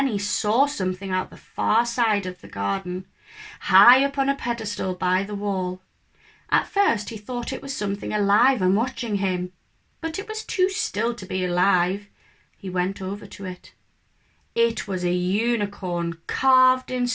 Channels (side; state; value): both; identical; correlation 1.00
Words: saw something out the far side of the garden, high up on a pedestal by the wall. At first he thought it was something alive and watching him, but it was too still to be alive. He went over to it. It was a unicorn carved in